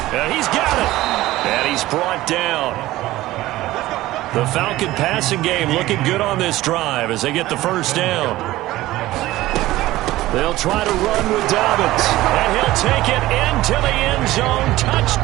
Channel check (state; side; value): quieter; left; 16.7 dB